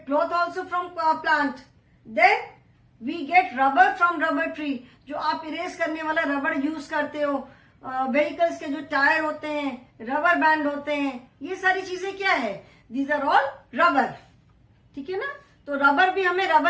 cloth also from plant. Then we get rubber from rubber tree. जो आप इरेज करने वाला रबर यूज करते हो, व्हीकल्स के जो टायर होते हैं, रबर बैंड होते हैं, ये सारी चीजें क्या है? These are all rubber. ठीक है ना? तो रबर भी हमें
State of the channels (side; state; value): both; identical; correlation 1.00